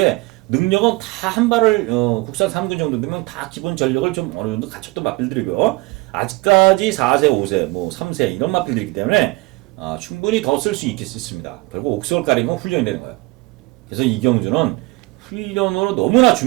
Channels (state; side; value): quieter; left; 23.4 dB